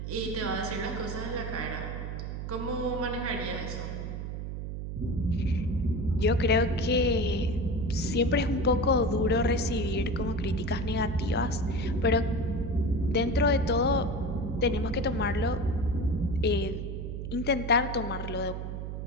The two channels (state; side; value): noise; right; hum, 5 dB below the sound